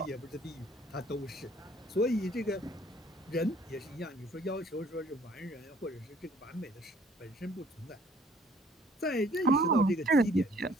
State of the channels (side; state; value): both; normal; correlation 0.58